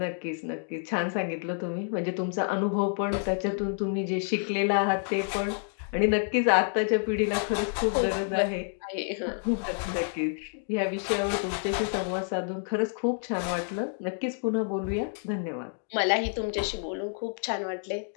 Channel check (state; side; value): silent; right; 59 dB below the other